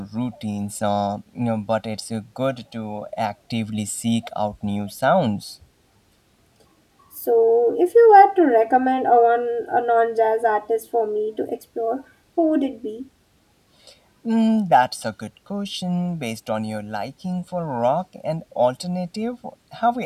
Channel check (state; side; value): identical; both; correlation 1.00